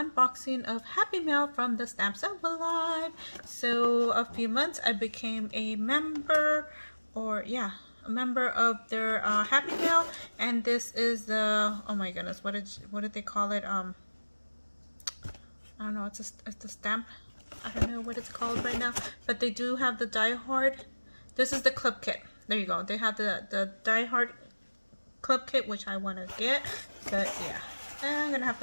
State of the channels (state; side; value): inverted; both; correlation -1.00